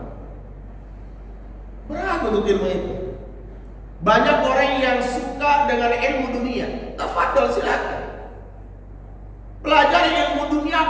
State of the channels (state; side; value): identical; both; correlation 1.00